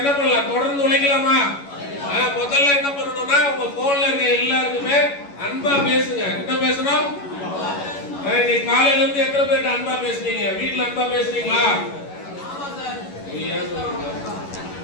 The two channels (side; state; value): right; late; 11 ms